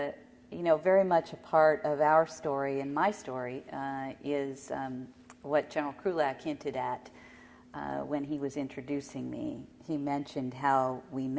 Very much a part of our story and my story is what General Krulak hinted at when he was introducing me. He mentioned how we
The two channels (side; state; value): both; identical; correlation 1.00